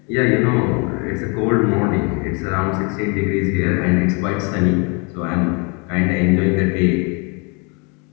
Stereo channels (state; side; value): quieter; right; 32.5 dB